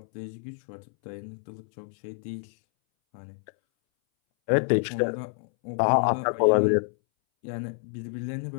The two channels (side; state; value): right; silent; 60 dB below the other